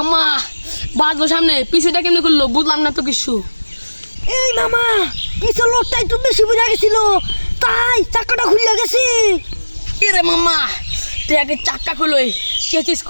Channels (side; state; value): both; inverted; correlation -1.00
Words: বাজবো সামনে পিছুটা কেমনি করলো বুঝলাম না তো কিছু। এই মামা পিছন লোকটা একটু বেশি বুঝা গেছিল তাই চাকাটা খুলে গেছে। কি রে মামা তুই আগে চাক্কা খুলোই চেচিস